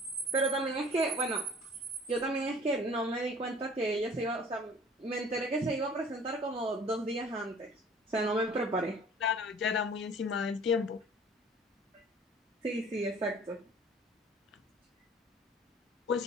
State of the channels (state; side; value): normal; both; correlation 0.50